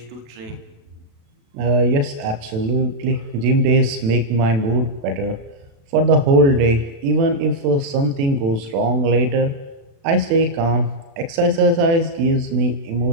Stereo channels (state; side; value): late; left; 36 ms